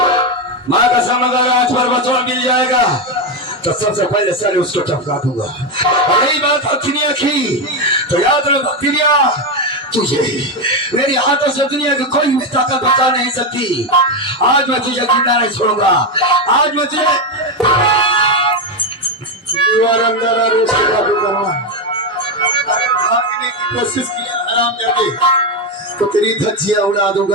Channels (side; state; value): both; normal; correlation 0.09